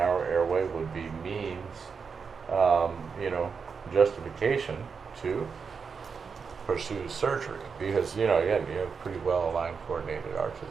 airway would be means, justification to pursue surgery. Because, again, you have pretty well aligned coordinated arches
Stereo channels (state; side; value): quieter; left; 5.7 dB